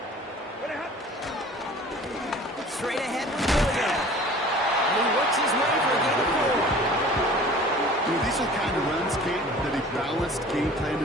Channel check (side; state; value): both; normal; correlation 0.45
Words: Straight ahead with Williams. And he works his way for a gain of 4. You know, these are the kind of runs, Kate, that a balanced game plan